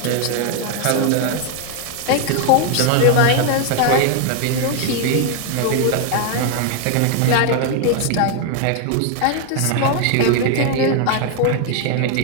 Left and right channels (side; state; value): both; different; correlation 0.01